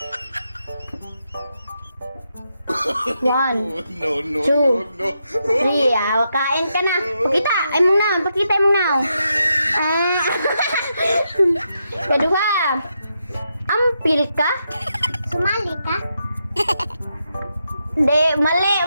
1, No, 2, 3. Kain ka na. Pakita. Ay mong now. Pakita mong now. Kedua. Ampil ka? Sumali ka? Di, mali.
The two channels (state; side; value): inverted; both; correlation -0.83